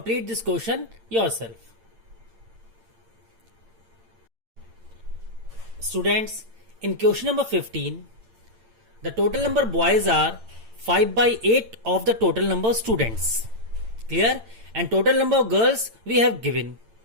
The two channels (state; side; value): late; left; 8.9 ms